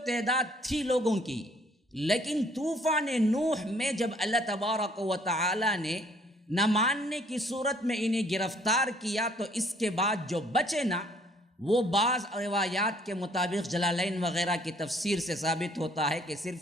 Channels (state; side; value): normal; both; correlation 0.61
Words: تعداد تھی لوگوں کی، لیکن طوفان نوح میں جب اللہ تبارک و تعالی نے نہ ماننے کی صورت میں انہیں گرفتار کیا، تو اس کے بعد جو بچے نا، وہ بعض روایات کے مطابق جلالین وغیرہ کی تفسیر سے ثابت ہوتا ہے کہ